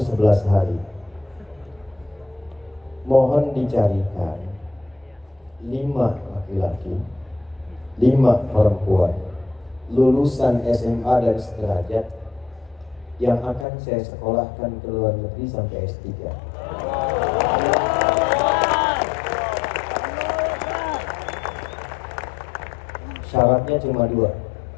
11 hari. Mohon dicarikan 5 laki-laki, 5 perempuan lulusan SMA dan sederajat yang akan saya sekolahkan ke luar negeri sampai S3. Syaratnya cuma 2.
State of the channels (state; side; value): drops out; right; at 13.7 s